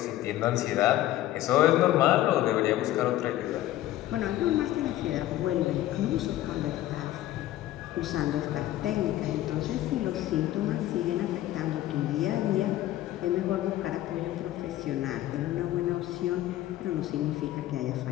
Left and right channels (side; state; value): right; quieter; 14.3 dB